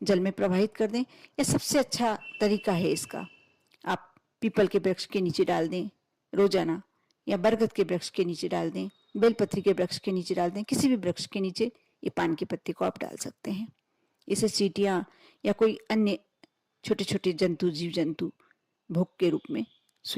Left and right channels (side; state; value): both; identical; correlation 1.00